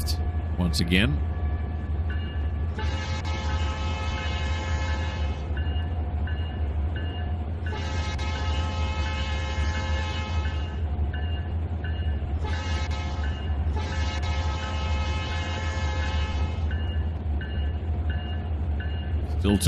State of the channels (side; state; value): both; identical; correlation 1.00